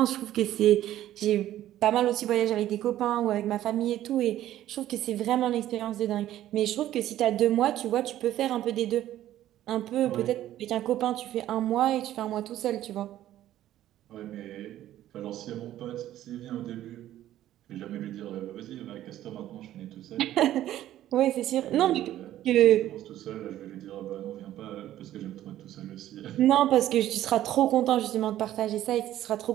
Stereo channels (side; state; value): left; quieter; 13.1 dB